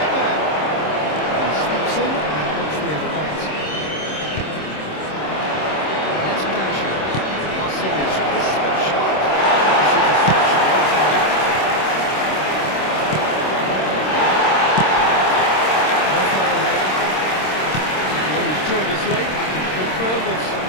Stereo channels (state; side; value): late; right; 26 ms